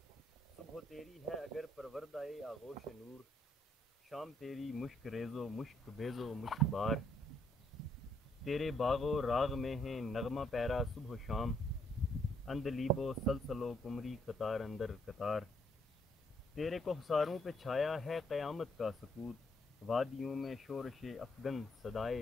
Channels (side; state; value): both; normal; correlation 0.72